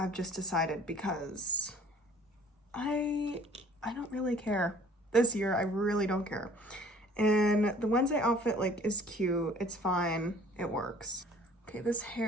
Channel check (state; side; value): normal; both; correlation 0.53